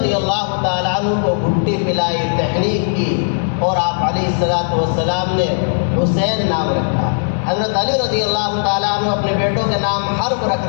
اللہ تعالیٰ عنہ کو گھٹی پلائی، تحریک کی، اور آپ علیہ الصلوۃ والسلام نے حسین نام رکھا۔ حضرت علی رضی اللہ تعالیٰ عنہ اپنے بیٹوں کے نام حرب رکھ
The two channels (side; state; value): right; silent; digital silence